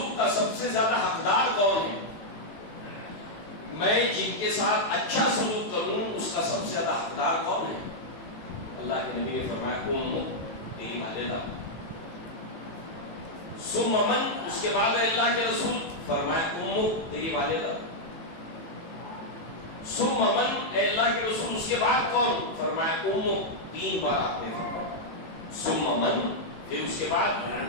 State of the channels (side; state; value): right; late; 18 ms